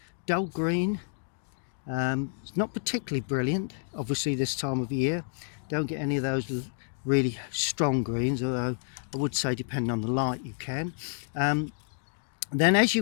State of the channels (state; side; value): silent; right; digital silence